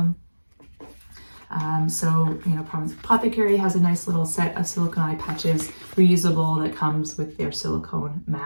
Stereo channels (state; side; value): inverted; both; correlation -1.00